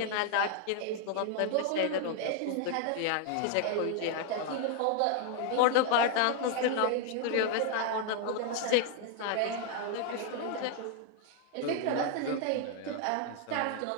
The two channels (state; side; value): different; both; correlation 0.00